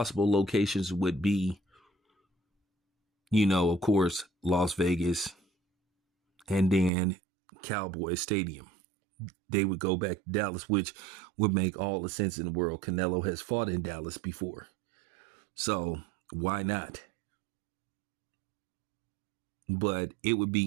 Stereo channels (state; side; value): drops out; left; at 6.9 s